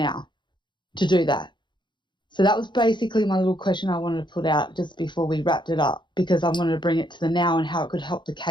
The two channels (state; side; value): late; right; 0.22 ms